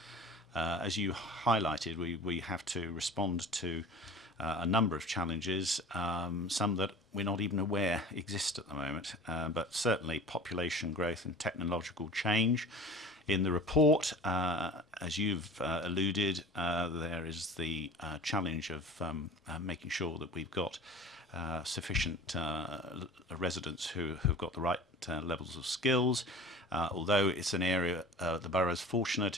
As you highlighted, we have to respond to a number of challenges, some that we're not even aware exist at the moment, but certainly population growth and technological change. In the report, as you've alluded, there is the challenge of making sure that we've got sufficient residents who have got the right levels of skills. Although it's an area, the borough is fortunate,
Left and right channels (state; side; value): normal; both; correlation 0.40